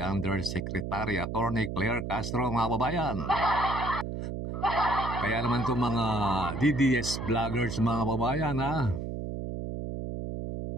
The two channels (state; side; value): noise; right; hum, 5 dB below the sound